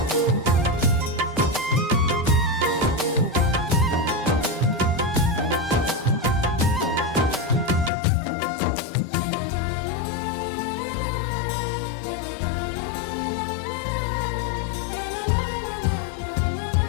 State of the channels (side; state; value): right; drops out; at 7.9 s